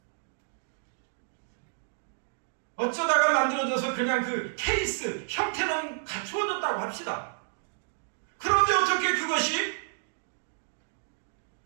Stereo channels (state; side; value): silent; left; digital silence